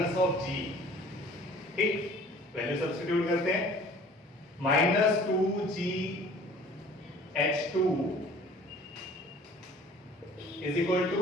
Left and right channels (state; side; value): normal; both; correlation 0.50